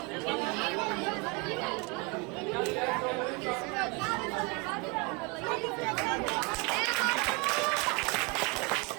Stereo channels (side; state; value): left; quieter; 28.2 dB